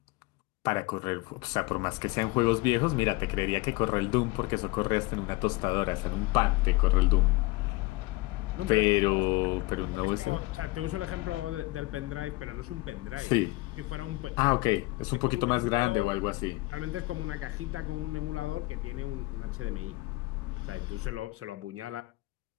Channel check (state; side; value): quieter; right; 22.2 dB